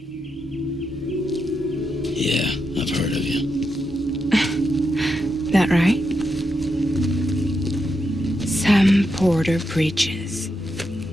Yeah, I've heard of you. That right? Sam Porter Bridges.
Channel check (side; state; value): both; normal; correlation 0.84